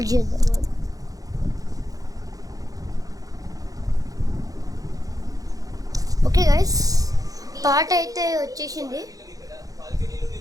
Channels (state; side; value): late; left; 0.17 ms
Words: చేద్దాం. ఓకే గైస్, పాట అయితే వచ్చేసింది,